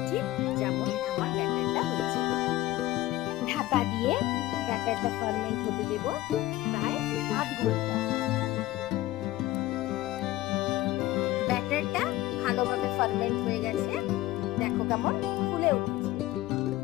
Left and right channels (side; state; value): right; quieter; 16.7 dB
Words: ঠিক যেমন আমার ব্যাটারটা হয়েছে। ঢাকা দিয়ে ব্যাটারটা ফার্মেন্ট হতে দেব প্রায় আধ ঘন্টা। ব্যাটারটা ভালোভাবে ফার্মেন্ট হয়ে গেছে, দেখো কেমন ফুলে উঠেছে।